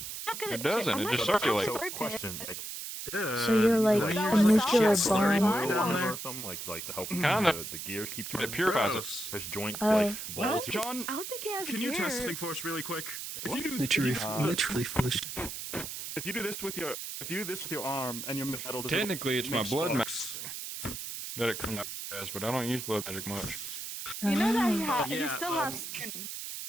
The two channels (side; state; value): right; noise; hiss, 7 dB below the sound